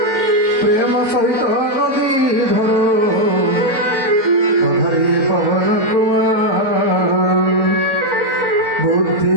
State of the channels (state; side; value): late; left; 3.9 ms